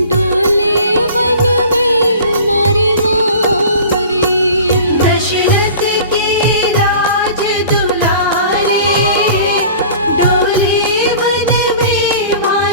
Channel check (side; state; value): both; inverted; correlation -0.43